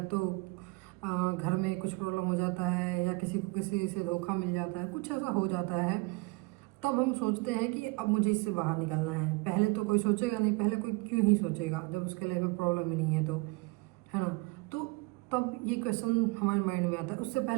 तो घर में कुछ प्रॉब्लम हो जाता है, या किसी को किसी से धोखा मिल जाता है, कुछ ऐसा हो जाता है, तब हम सोचते हैं कि अब मुझे इससे बाहर निकलना है। पहले तो कोई सोचेगा नहीं, पहले कोई क्यों ही सोचेगा जब उसके लाइफ में प्रॉब्लम ही नहीं है, तो है ना। तो तब ये क्वेश्चन हमारे माइंड में आता है। उससे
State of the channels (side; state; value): left; quieter; 26.1 dB